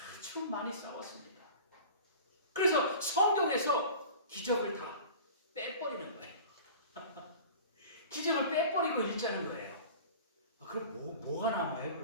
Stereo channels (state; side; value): inverted; both; correlation -0.39